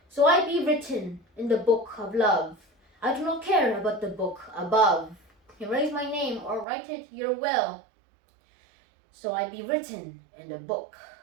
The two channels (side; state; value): left; drops out; at 6.7 s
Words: So I be written in the book of love. I do not care about the book above. Erase my name or write it your will. So I be written in the book